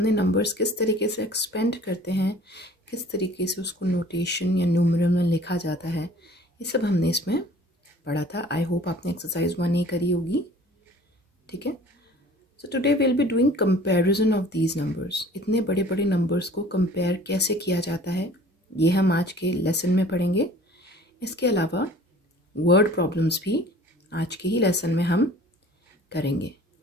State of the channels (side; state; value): both; normal; correlation 0.48